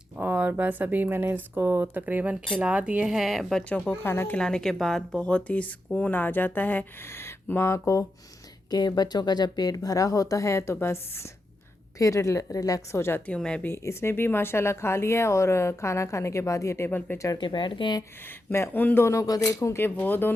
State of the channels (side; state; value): both; normal; correlation 0.87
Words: और बस अभी मैंने इसको तकरीबन खिला दिए हैं। बच्चों को खाना खिलाने के बाद बहुत ही सुकून आ जाता है माँ को, कि बच्चों का जब पेट भरा होता है तो बस फिर रिलैक्स हो जाती हूँ मैं भी। इसने भी माशाल्लाह खा लिया है, और खाना खाने के बाद ये टेबल पे चढ़ के बैठ गए हैं। मैं उन दोनों को देखूँ कि वो